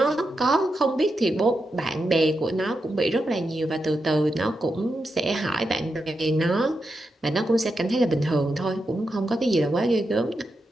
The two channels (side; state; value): both; normal; correlation 0.87